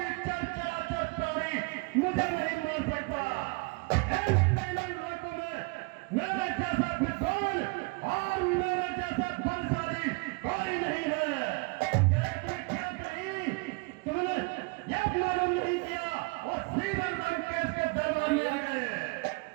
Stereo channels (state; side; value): quieter; left; 28.5 dB